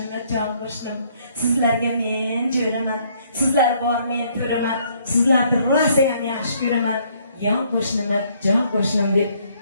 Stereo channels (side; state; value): both; inverted; correlation -0.66